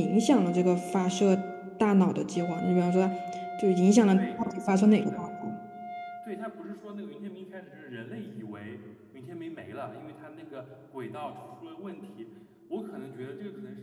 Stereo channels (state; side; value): identical; both; correlation 1.00